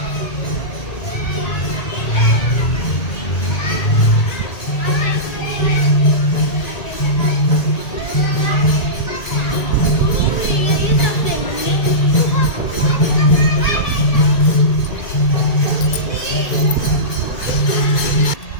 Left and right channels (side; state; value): right; late; 2.2 ms